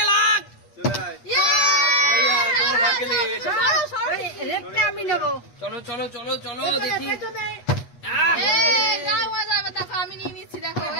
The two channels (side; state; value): right; late; 8.3 ms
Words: লাখ। আমি নেবো। চলো চলো চলো চলো দেখি। আমি নিয়ে নিচ্ছি, দেখো